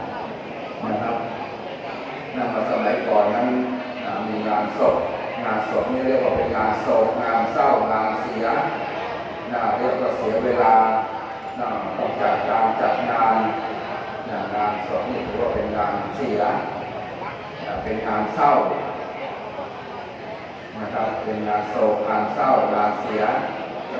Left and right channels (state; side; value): identical; both; correlation 1.00